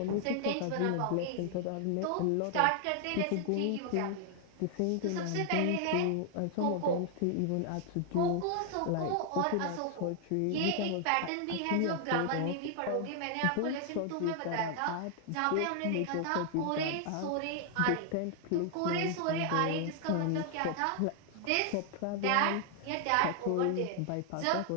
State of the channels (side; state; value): both; different; correlation 0.00